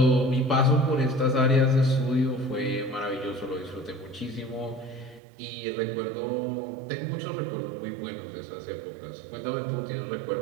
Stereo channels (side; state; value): left; drops out; at 5.2 s